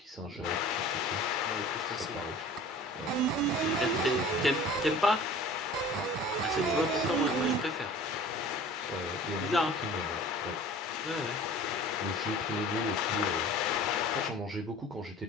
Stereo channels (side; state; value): both; normal; correlation 0.44